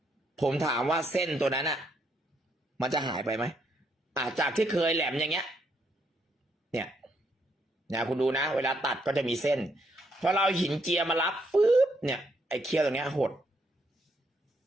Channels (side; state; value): both; normal; correlation 0.74